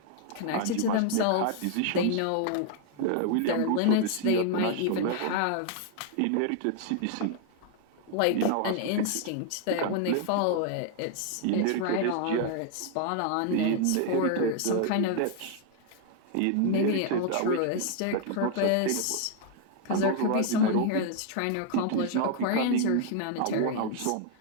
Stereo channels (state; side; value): different; both; correlation 0.00